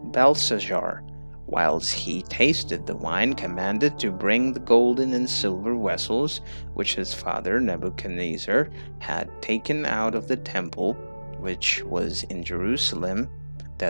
Belshazzar, whilst he tasted the wine, commanded to bring the golden and silver vessels which his father Nebuchadnezzar had taken out of the temple which was in Jerusalem,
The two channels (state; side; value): inverted; both; correlation -1.00